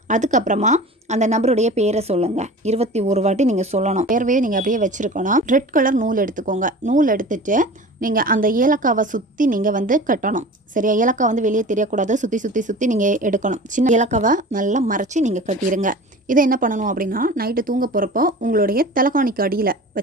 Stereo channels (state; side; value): normal; both; correlation 0.38